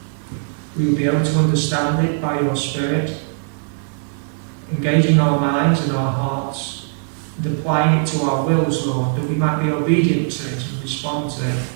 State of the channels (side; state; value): left; silent; digital silence